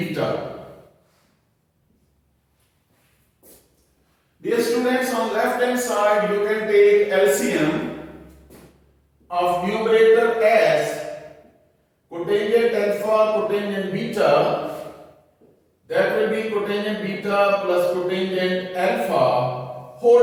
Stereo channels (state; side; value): identical; both; correlation 1.00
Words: Dear students, on left hand side you can take LCM of numerator as cotangent alpha cotangent beta, that will be cotangent beta plus cotangent alpha